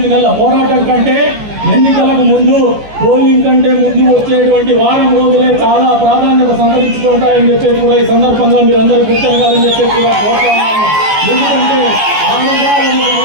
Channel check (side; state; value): left; late; 14 ms